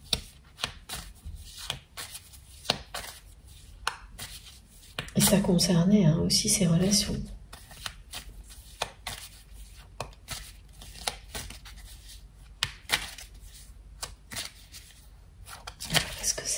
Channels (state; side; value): identical; both; correlation 1.00